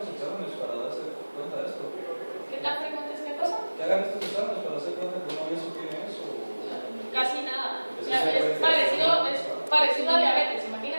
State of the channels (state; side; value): inverted; both; correlation -1.00